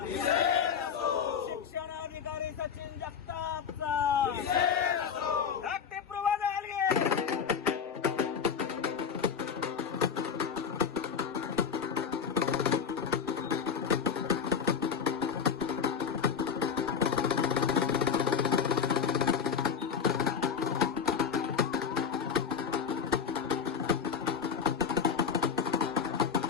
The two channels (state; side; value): quieter; right; 6.8 dB